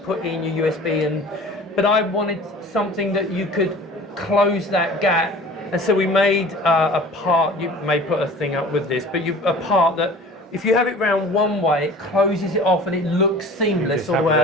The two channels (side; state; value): both; normal; correlation 0.43